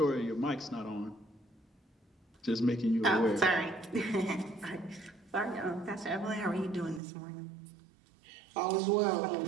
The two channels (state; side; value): drops out; left; at 7.0 s